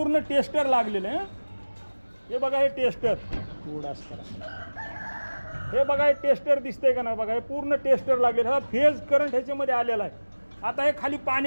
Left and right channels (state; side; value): inverted; both; correlation -1.00